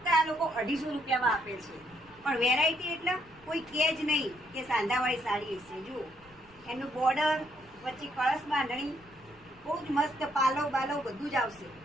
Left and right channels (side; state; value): left; noise; rumble, 27 dB below the sound